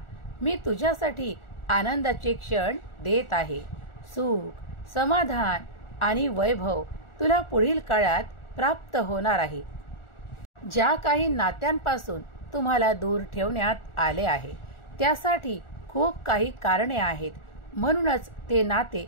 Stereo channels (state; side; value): late; right; 1.4 ms